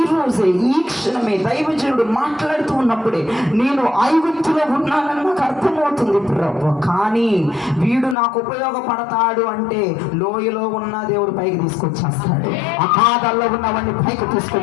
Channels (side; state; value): right; drops out; at 8.2 s